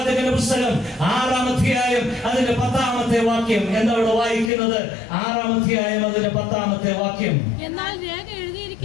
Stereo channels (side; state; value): right; drops out; at 4.5 s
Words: പുസ്തകം 6-ാം അധ്യായം അതിന്റെ 10-ാമത്തെ വാക്യം. എന്താ അവിടെ വായിക്കുന്നത്? 6-ാം അധ്യായം അതിന്റെ 10-ാമത്തെ വാക്യം. എന്നാൽ രേഖ